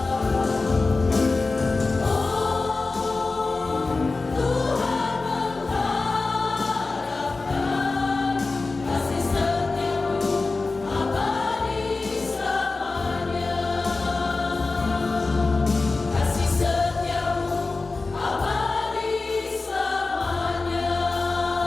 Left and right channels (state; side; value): quieter; right; 3.7 dB